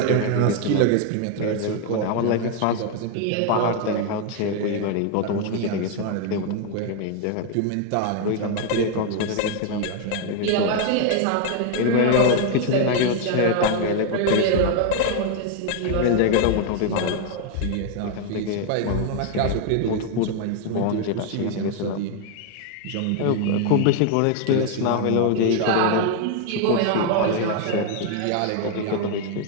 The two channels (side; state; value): both; different; correlation 0.01